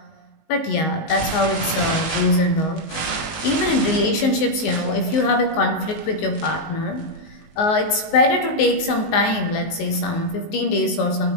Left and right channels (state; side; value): late; right; 19 ms